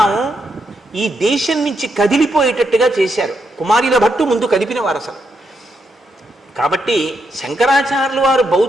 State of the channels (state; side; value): normal; both; correlation 0.80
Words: ఈ దేశం నుంచి కదిలిపోయేటట్టుగా చేశారు. కుమారిల భట్టు ముందు కదిపిన వారు అసలు. కాబట్టి శంకరాచార్యులు వారు